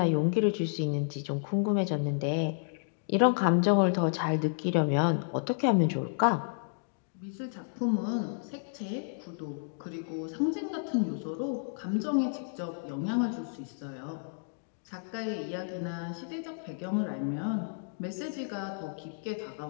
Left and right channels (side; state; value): right; silent; digital silence